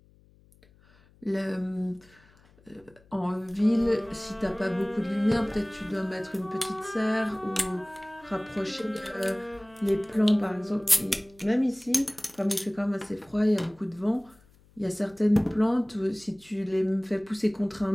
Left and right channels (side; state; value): left; noise; hum, 29 dB below the sound